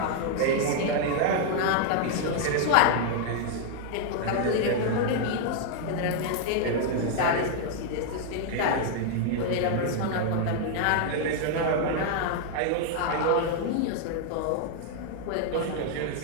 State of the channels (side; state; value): both; different; correlation 0.00